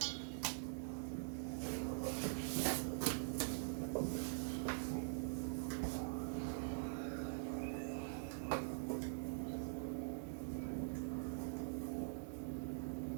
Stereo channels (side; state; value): left; silent; digital silence